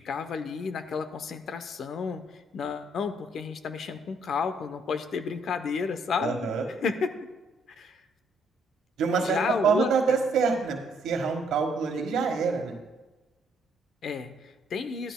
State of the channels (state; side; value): normal; both; correlation 0.68